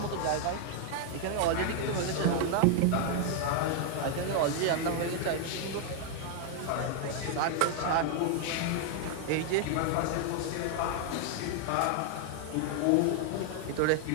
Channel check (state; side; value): different; both; correlation 0.00